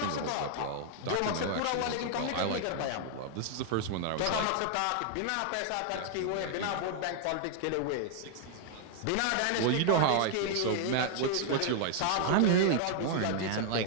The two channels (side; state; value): both; different; correlation 0.00